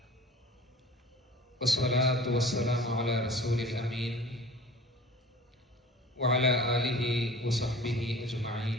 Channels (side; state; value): both; normal; correlation 0.43